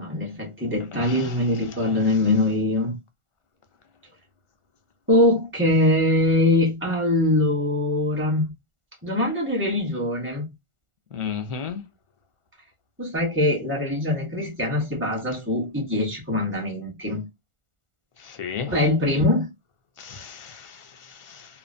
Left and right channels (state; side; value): late; left; 1.4 ms